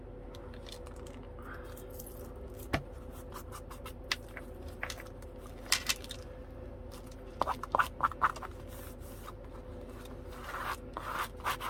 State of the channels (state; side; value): identical; both; correlation 1.00